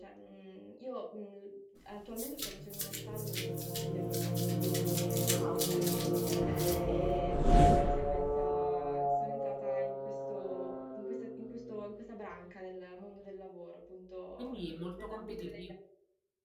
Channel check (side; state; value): both; identical; correlation 1.00